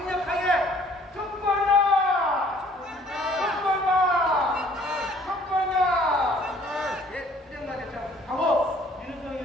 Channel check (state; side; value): normal; both; correlation 0.57